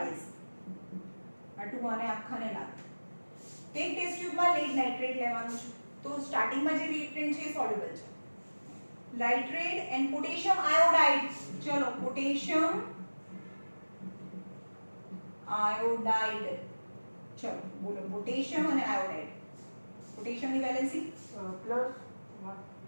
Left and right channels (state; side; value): inverted; both; correlation -1.00